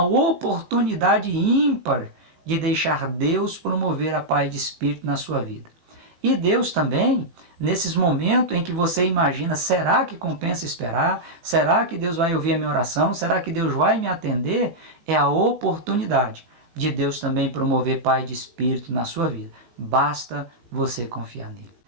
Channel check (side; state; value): left; late; 18 ms